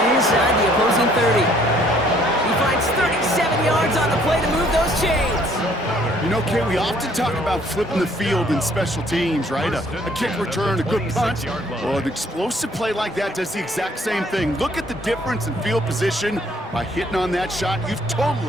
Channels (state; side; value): normal; both; correlation 0.62